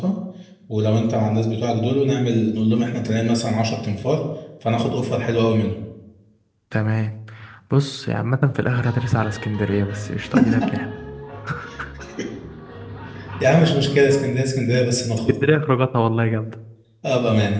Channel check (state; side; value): identical; both; correlation 1.00